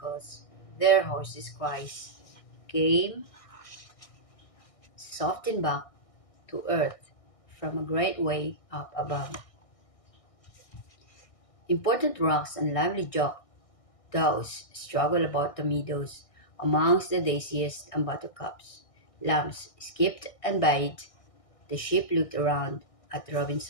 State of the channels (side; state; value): right; late; 1.6 ms